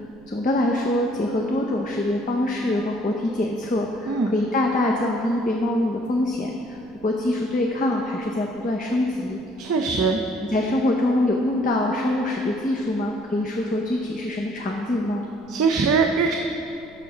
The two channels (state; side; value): noise; right; rumble, 26 dB below the sound